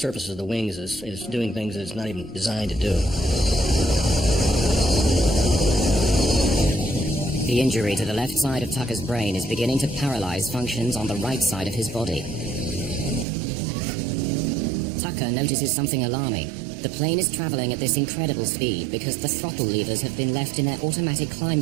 of the wings is doing things that it's not even designed to do. The injury to the left side of Tucker's brain is beginning to paralyze functions on the right side of his body. Tucker notices something alarming. The plane is traveling at this incredible speed because the throttle levers have been left in their automatic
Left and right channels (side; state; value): left; drops out; at 13.2 s